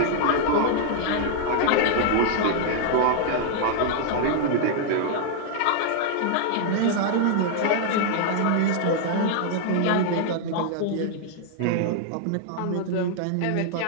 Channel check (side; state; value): both; different; correlation -0.01